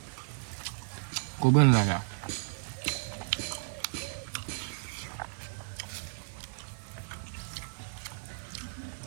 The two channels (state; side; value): silent; left; 55 dB below the other